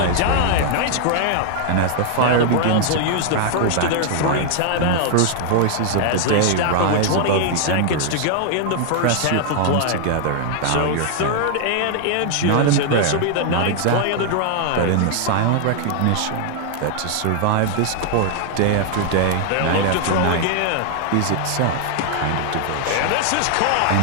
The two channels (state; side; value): different; both; correlation 0.00